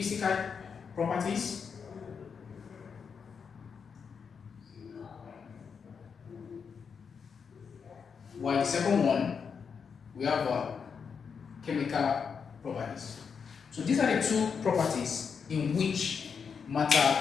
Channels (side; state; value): right; quieter; 6.2 dB